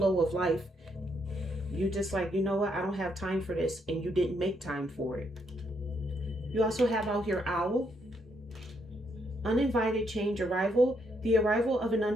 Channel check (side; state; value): both; normal; correlation 0.75